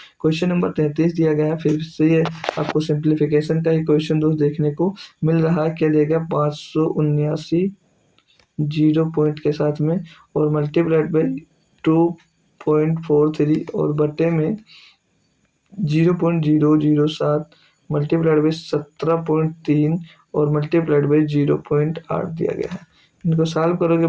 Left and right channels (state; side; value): identical; both; correlation 1.00